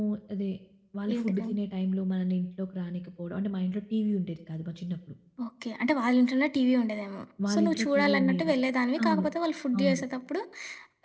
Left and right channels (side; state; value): both; identical; correlation 1.00